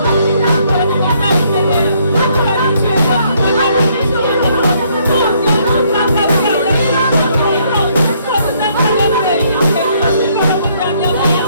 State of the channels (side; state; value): both; inverted; correlation -0.68